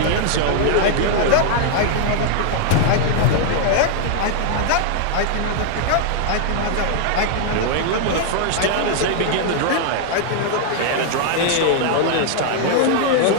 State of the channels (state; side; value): different; both; correlation 0.00